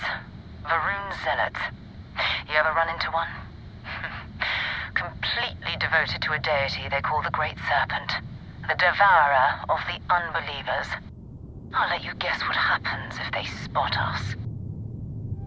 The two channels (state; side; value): identical; both; correlation 1.00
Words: Varun Zealots. You ever run into one? Completely devoted to a deity they call the Great Serpent. The devourer of the unbelievers. I'll let you guess what happens if they spot us.